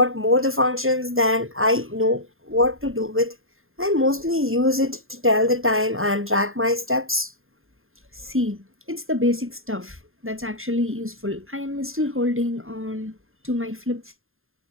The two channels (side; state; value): left; late; 0.61 ms